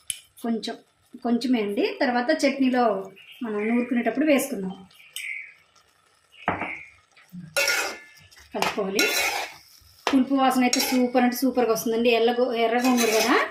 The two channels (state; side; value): identical; both; correlation 1.00